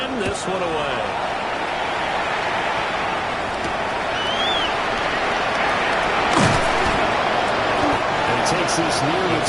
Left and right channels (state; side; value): identical; both; correlation 1.00